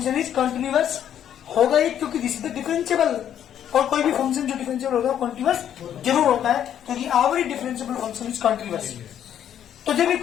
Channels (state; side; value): quieter; right; 10.0 dB